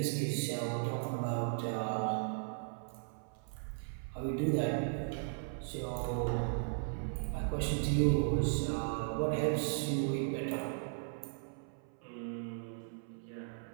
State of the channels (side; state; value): left; silent; 53 dB below the other